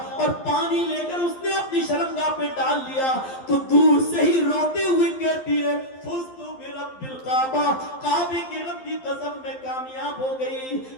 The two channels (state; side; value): late; right; 11 ms